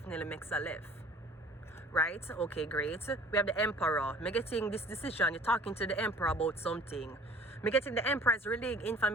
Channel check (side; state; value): both; normal; correlation 0.49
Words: makes a left. Right? Okay, great. We have the Emperor. Me getting this decision. You're talking to the Emperor about something. Me getting the Emperor is relaying